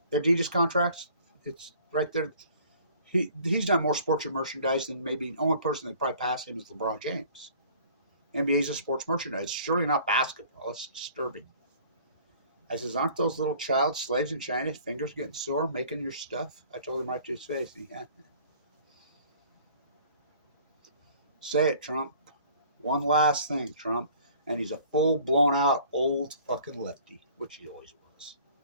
Adidas contracts, it's right there. He's done more sports merchandise than maybe the only person that probably passed him is LeBron James. NBA's a sports merchandise. It's surely not basketball. It's disturbing. I says, aren't those little child slaves in China, fingers getting sore making your stuff? I told him right to his face. Yeah. Say it, Trump. One last thing, Trump. And he's a full blown out old fucking lefty, which he always was.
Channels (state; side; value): inverted; both; correlation -0.52